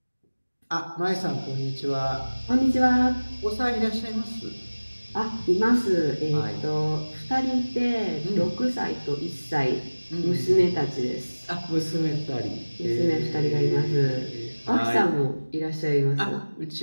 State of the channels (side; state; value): both; inverted; correlation -1.00